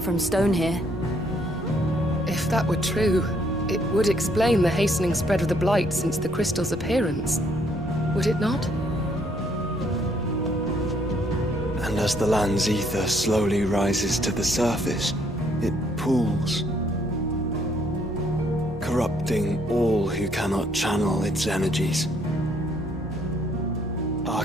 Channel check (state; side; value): normal; both; correlation 0.68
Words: from stone here. If that were true, it would explain the hastening spread of the Blight since the crystal's appearance. Would it not? And as the land's ether slowly rises to the surface, it pools, corrupting all who cannot channel its energies.